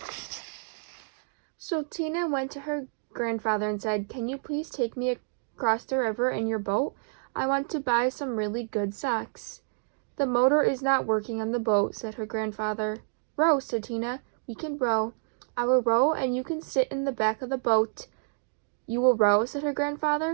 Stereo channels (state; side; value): silent; left; digital silence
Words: So Tina went to her grandfather and said, "Can you please take me across the river in your boat? I want to buy some really good socks." "The motor is not working on the boat," said her grandfather. "Row," said Tina. "We can row. I will row and you can sit in the back of the boat." "You will row?" said her